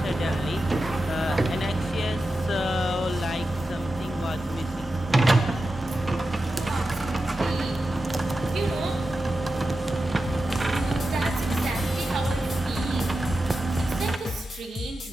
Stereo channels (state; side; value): normal; both; correlation 0.91